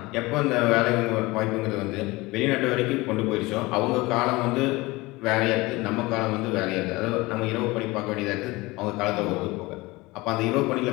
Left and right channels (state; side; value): quieter; right; 21.8 dB